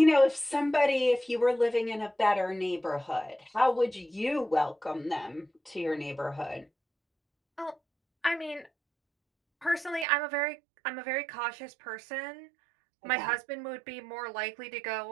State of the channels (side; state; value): left; drops out; at 10.1 s